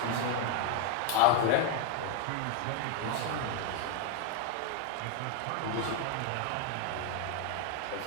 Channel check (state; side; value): different; both; correlation 0.01